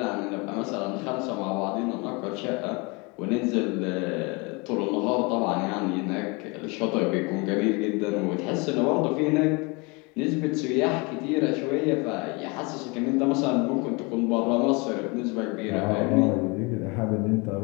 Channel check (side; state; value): right; quieter; 28.5 dB